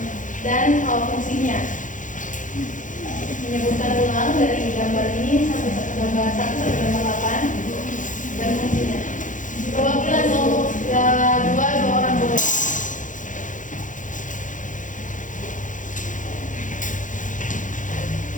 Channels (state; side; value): late; right; 0.37 ms